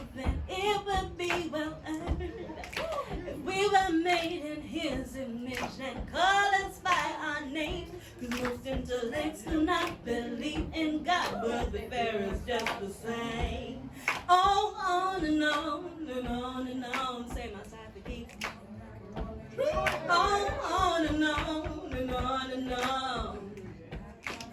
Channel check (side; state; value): both; identical; correlation 1.00